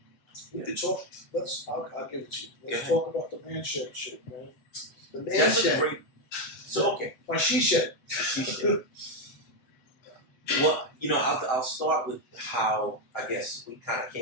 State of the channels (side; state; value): right; late; 7.6 ms